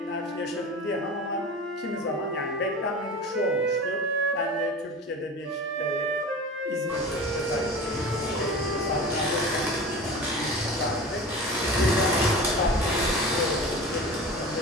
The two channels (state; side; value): normal; both; correlation 0.34